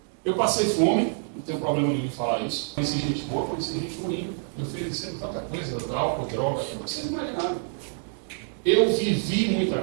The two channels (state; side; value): silent; left; 57 dB below the other